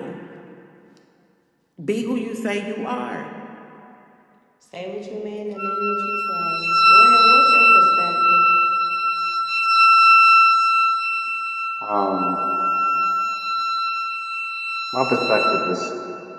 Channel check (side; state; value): both; identical; correlation 1.00